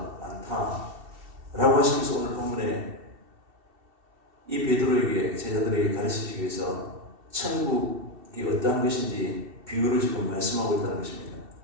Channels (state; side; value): late; left; 2.7 ms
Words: 많다 라고 하시면서 오늘 본문에 이 베드로에게 제자들에게 가르치기 위해서 천국이 어떠한 것인지 비유를 지금 말씀하고 있다는 것입니다.